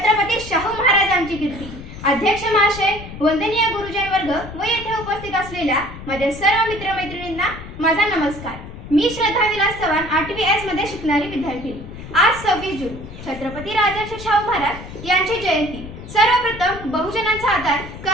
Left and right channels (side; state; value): left; noise; rumble, 13 dB below the sound